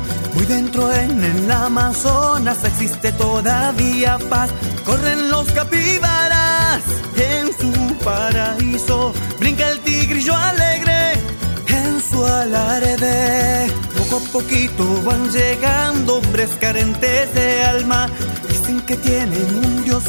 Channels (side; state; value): both; inverted; correlation -1.00